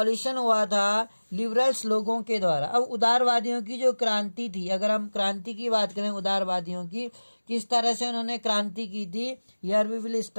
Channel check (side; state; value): both; inverted; correlation -1.00